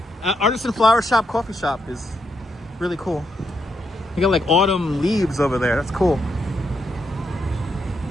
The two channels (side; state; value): both; normal; correlation 0.80